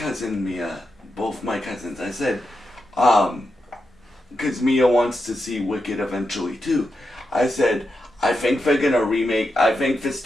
Mia, both my cousins, I said, because Mia wants to see Wicked eventually too. I said, I think they're gonna remake. I think this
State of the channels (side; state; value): both; normal; correlation 0.87